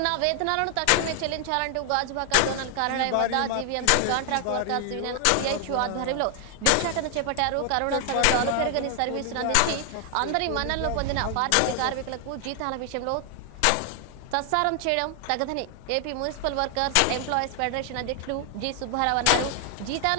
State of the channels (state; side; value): different; both; correlation 0.00